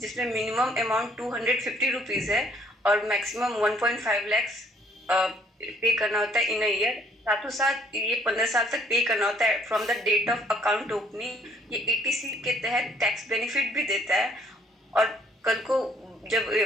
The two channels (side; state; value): both; normal; correlation 0.62